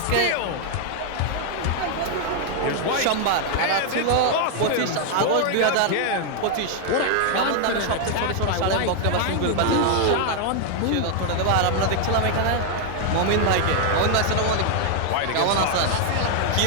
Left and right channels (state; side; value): different; both; correlation 0.00